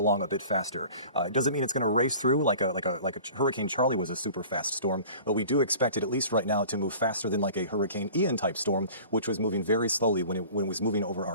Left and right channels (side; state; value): both; inverted; correlation -0.44